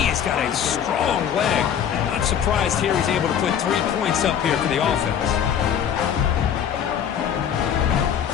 has got a strong leg. Not surprised here he's able to put 3 points up here for the offense.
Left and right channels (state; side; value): quieter; right; 8.8 dB